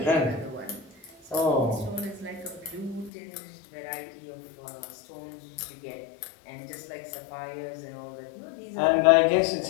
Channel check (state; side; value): drops out; right; at 3.1 s